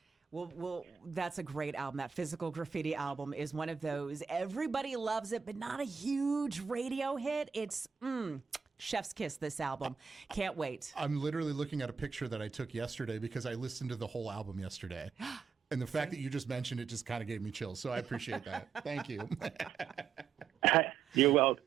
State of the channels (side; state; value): left; quieter; 6.3 dB